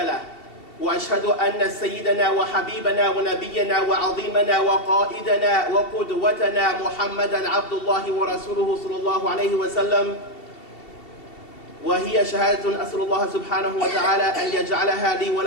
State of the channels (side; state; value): right; late; 2.7 ms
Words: وأشهد أن سيدنا وحبيبنا ونبينا وعظيمنا وقائدنا وقدوتنا محمدا عبد الله ورسوله صلى الله عليه وسلم، وهي شهادة أسأل الله سبحانه وتعالى أن يجعلها لي